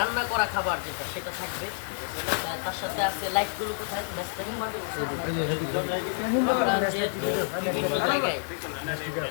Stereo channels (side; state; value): right; silent; 59 dB below the other